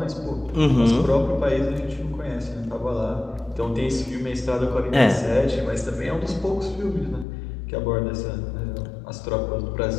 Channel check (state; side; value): drops out; right; at 7.2 s